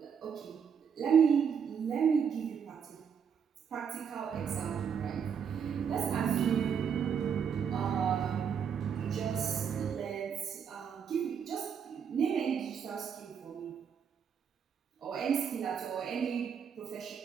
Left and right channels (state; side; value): quieter; left; 7.3 dB